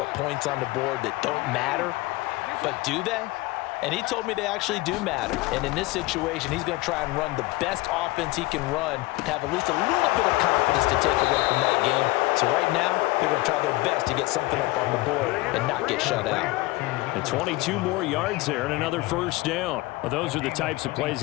points on the board that don't matter. But do they? And he told me they actually do matter. And in this situation, he's going to try and run the best offense he can run to have at least a little bit of confidence to take away from that game. So right now, they're going to try their best to get something up on the board and not get shut out. And 22 more yards there and another 1st down. Well, those are the types of plays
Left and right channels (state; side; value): quieter; right; 20.8 dB